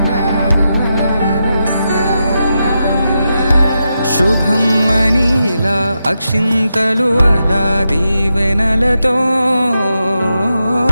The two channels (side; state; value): both; inverted; correlation -0.87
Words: శుభమ్మని ఇలా అక్షింతలు అలా దీవెనలతో